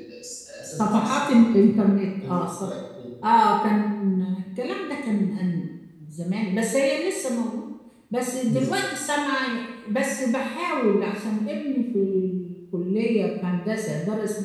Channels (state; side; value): identical; both; correlation 1.00